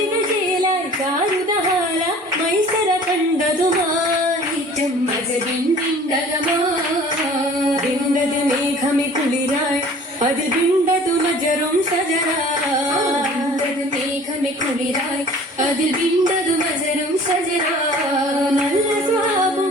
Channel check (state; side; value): normal; both; correlation 0.48